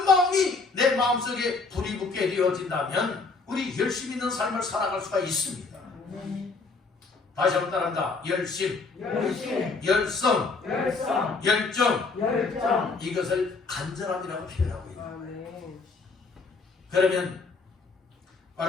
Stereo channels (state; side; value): quieter; right; 4.1 dB